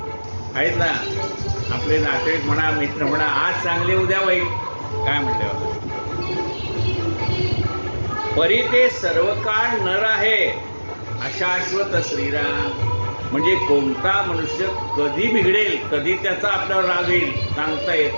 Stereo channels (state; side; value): inverted; both; correlation -1.00